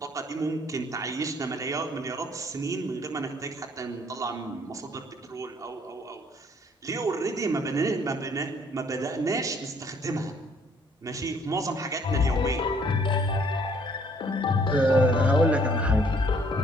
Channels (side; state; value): both; normal; correlation 0.62